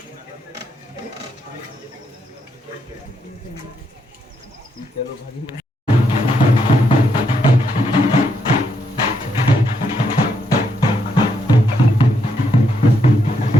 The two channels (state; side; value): normal; both; correlation 0.78